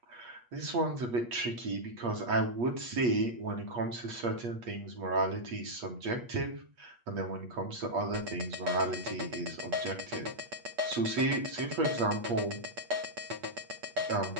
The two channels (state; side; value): late; left; 8.4 ms